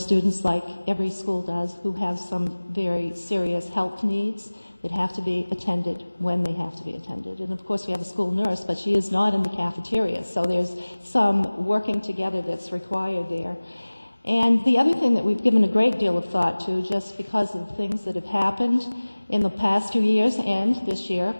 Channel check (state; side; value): inverted; both; correlation -1.00